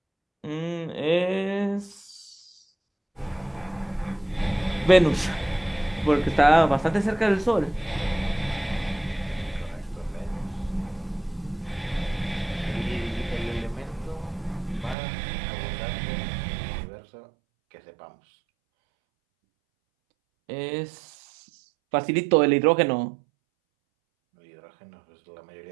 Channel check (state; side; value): drops out; left; at 15.0 s